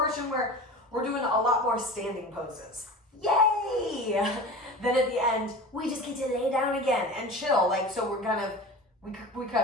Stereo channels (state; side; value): normal; both; correlation 0.34